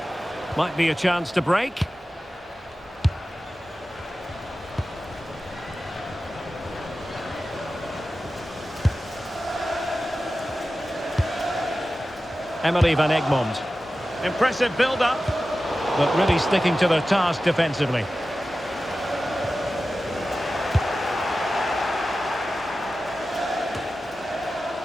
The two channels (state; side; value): normal; both; correlation 0.94